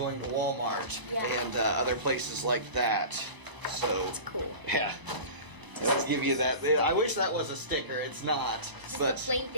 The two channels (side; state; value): left; late; 1.0 ms